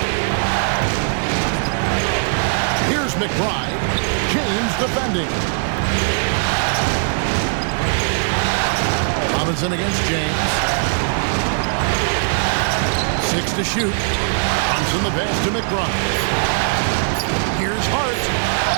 Here's McBride. James defending. Robinson against James. 6 to shoot. Brunson the pass to McBride. Here's Hart.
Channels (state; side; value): silent; left; digital silence